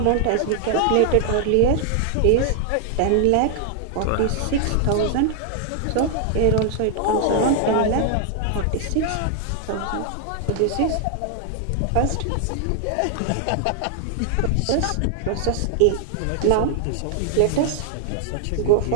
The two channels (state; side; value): different; both; correlation 0.00